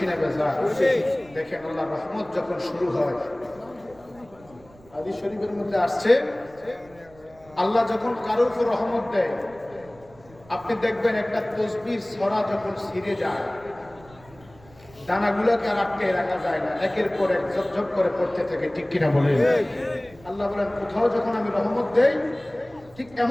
না বেজার? দেখেন আল্লাহর রহমত যখন শুরু হয়, হাদিস শরীফের মধ্যে আসছে আল্লাহ যখন কারো উপর রহমত দেয়, আপনি দেখবেন একটা তসবির ছড়া যখন ছিঁড়ে যায়, দানাগুলোকে আর আটকে রাখা যায় না, একের পর এক ঝপঝপ করে পড়তে থাকে। ঠিক কিনা বলেন? আল্লাহ বলেন কোথাও যখন আমি রহমত দেই ঠিক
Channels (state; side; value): noise; right; rumble, 25 dB below the sound